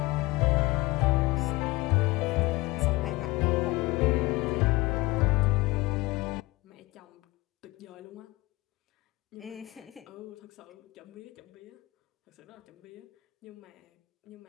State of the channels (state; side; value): quieter; right; 21.3 dB